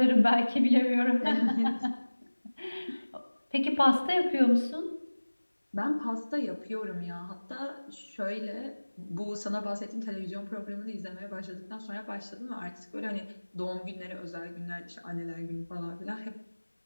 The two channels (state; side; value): inverted; both; correlation -1.00